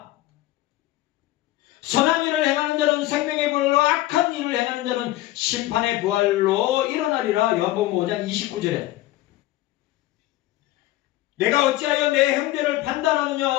선한 일을 행하는 자는 생명의 부활로, 악한 일을 행하는 자는 심판의 부활로 일어나리라. 요한복음 5장 29절에 내가 어찌하여 내 형제를 판단하느냐,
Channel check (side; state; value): right; quieter; 16.1 dB